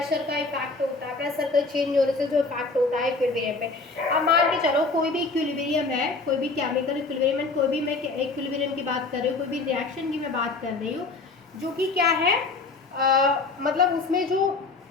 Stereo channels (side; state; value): right; quieter; 3.8 dB